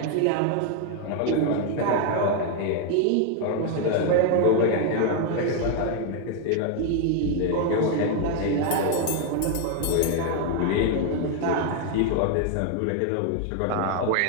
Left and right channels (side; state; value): both; different; correlation 0.01